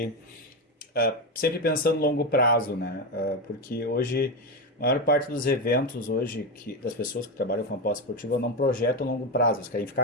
sempre pensando no longo prazo, né? Porque hoje a maior parte dos eventos hoje das pessoas que trabalham com aposta esportiva não projetam longo prazo. Eles querem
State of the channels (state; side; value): normal; both; correlation 0.14